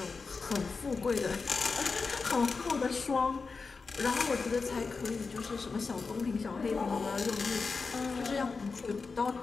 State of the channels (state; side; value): quieter; right; 4.5 dB